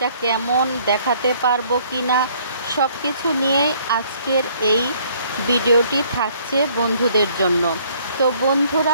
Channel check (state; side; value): inverted; both; correlation -0.61